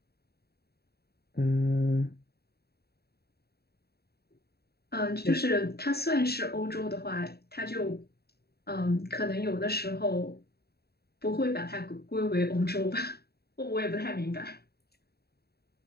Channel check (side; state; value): right; late; 0.46 ms